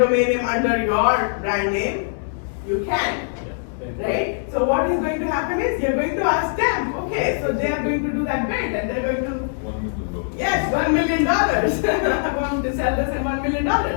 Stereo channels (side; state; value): right; silent; digital silence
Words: name under your brand name, you can. Right? So what is going to happen is you're going to ask them, okay, so they are going to do that bid and they're going to, yes, $1 million. I'm going to sell this at $1 million.